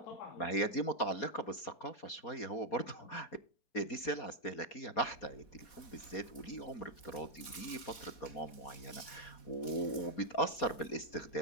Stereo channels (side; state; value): right; late; 4.1 ms